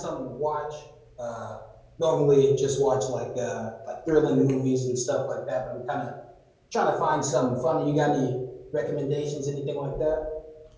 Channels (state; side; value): identical; both; correlation 1.00